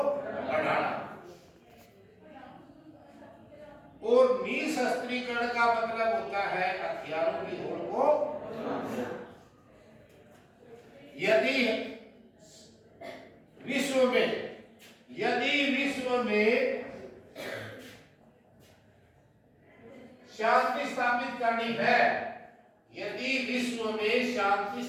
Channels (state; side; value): identical; both; correlation 1.00